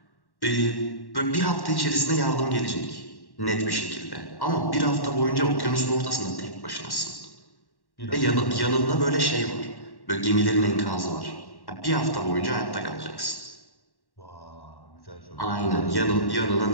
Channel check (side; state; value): right; late; 1.1 ms